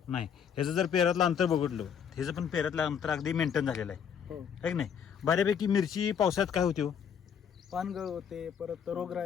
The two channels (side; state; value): right; quieter; 7.7 dB